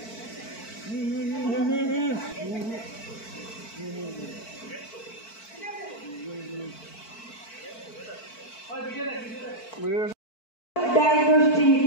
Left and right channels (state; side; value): late; right; 4.5 ms